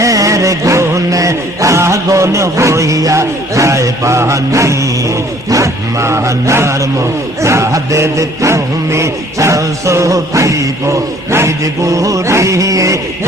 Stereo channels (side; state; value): both; normal; correlation 0.57